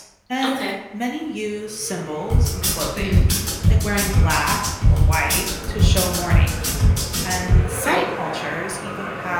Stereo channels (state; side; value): identical; both; correlation 1.00